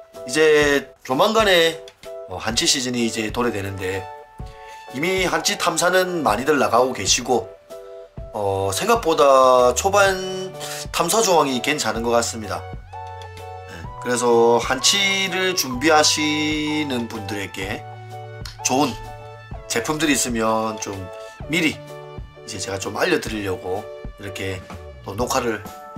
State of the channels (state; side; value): identical; both; correlation 1.00